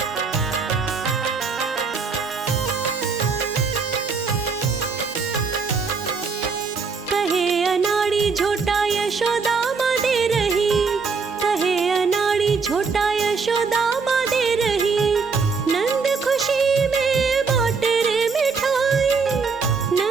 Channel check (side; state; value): left; quieter; 5.0 dB